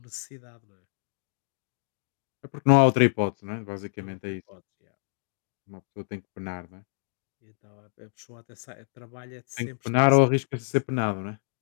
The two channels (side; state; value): right; silent; digital silence